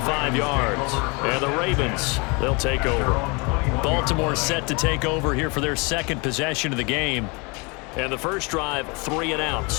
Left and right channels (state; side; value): quieter; right; 29.8 dB